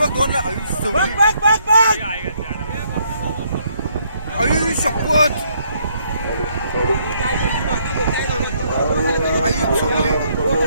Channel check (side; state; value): both; inverted; correlation -0.70